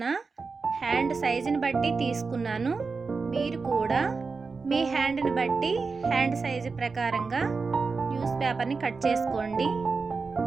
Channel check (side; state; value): left; quieter; 4.5 dB